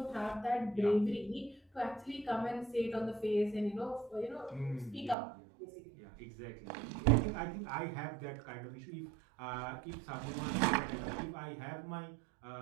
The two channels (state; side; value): drops out; left; at 5.2 s